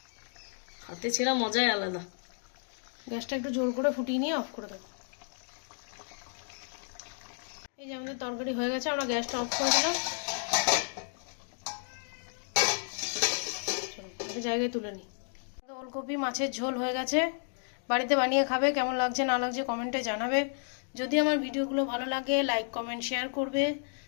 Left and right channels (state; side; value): silent; right; digital silence